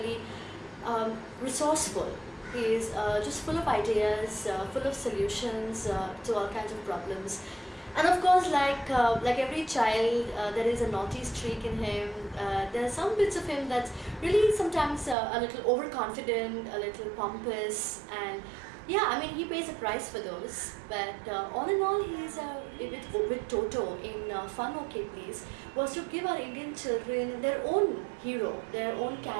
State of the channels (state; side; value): drops out; left; at 15.2 s